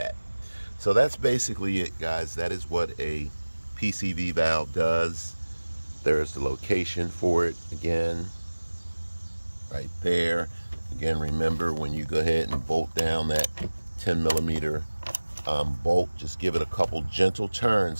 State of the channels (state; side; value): inverted; both; correlation -1.00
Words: So that's basically it, guys. That is what a PCV valve does. There's the location for it again, right there. Again, remember, when you go ahead and bolt down that 10mm bolt, just give it a couple gentle turns,